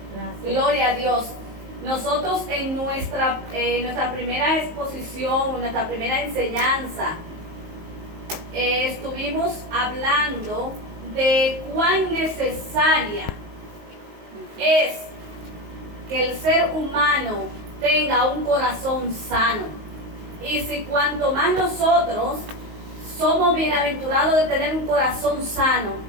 Gracias. Gloria a Dios. Nosotros en nuestra primera exposición, nuestra primera enseñanza, estuvimos hablando de cuán necesaria es que el ser humano tenga un corazón sano. Y si cuanto más nosotros somos bienaventurados de tener un corazón sano,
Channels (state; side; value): late; left; 19 ms